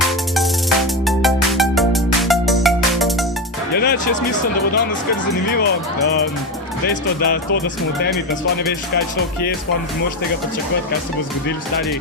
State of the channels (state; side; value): normal; both; correlation 0.17